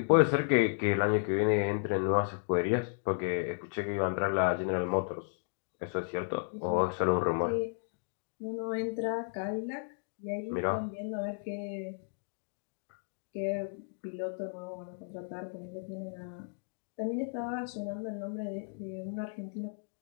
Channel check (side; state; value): right; silent; digital silence